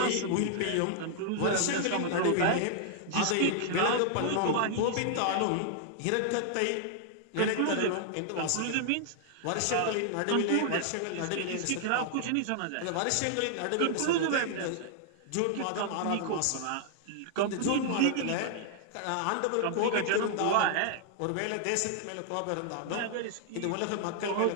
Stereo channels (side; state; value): both; different; correlation 0.00